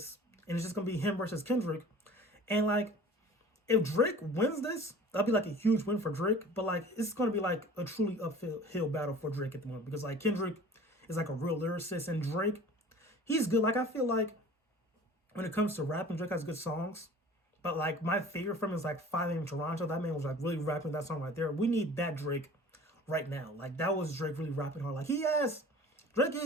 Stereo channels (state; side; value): normal; both; correlation 0.45